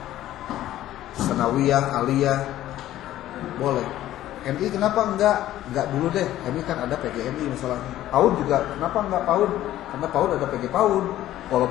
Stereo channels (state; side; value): quieter; right; 13.7 dB